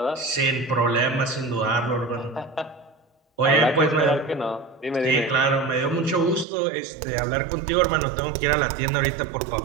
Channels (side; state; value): left; drops out; at 6.5 s